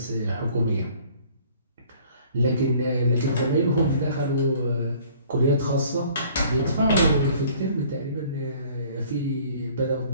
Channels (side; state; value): both; inverted; correlation -0.54